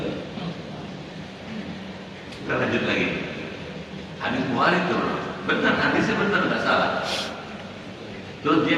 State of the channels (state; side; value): identical; both; correlation 1.00